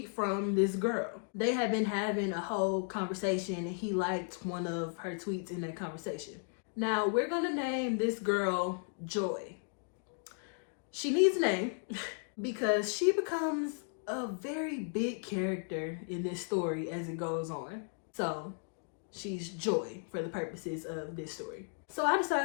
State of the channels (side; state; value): right; silent; 54 dB below the other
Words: from this girl. They had been having a whole conversation and he liked one of her tweets in that conversation. Now we're gonna name this girl Joy. She needs a name because she becomes a very big character in this story as it goes on. So she's Joy for the purposes of this story. So I